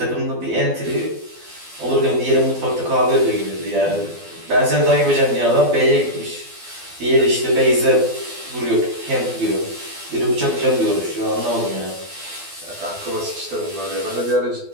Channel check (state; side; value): late; left; 12 ms